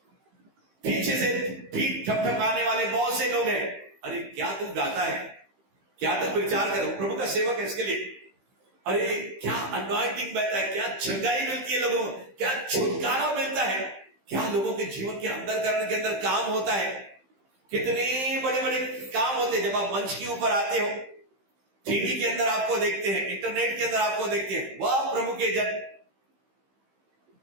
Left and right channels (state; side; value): late; left; 15 ms